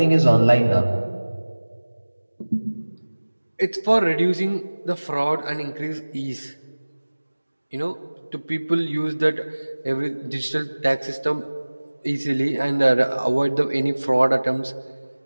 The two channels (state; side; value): inverted; both; correlation -1.00